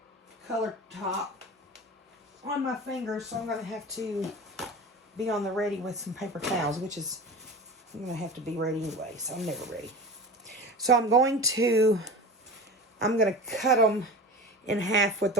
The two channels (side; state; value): both; normal; correlation 0.32